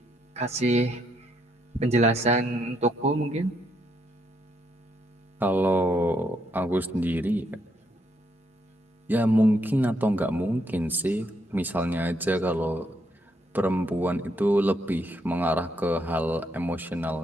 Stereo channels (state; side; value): normal; both; correlation 0.75